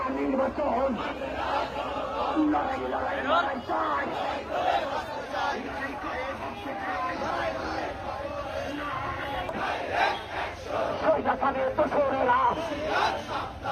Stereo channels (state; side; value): identical; both; correlation 1.00